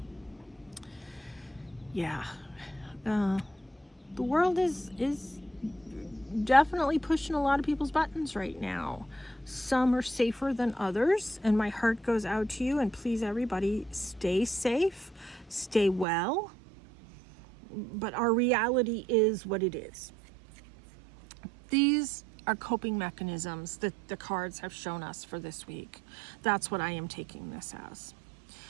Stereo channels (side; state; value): left; drops out; at 16.1 s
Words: Yeah, the world is definitely pushing a lot of people's buttons right now. Some are safer than others, and my heart goes out to you, and please everybody stay safe, stay well, but our reality is what it is. These are coping mechanisms that the cards have shown us for this week. That's what I am taking this as.